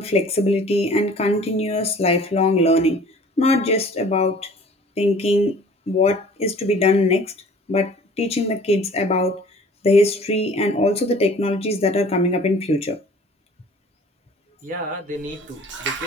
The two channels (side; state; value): both; normal; correlation 0.49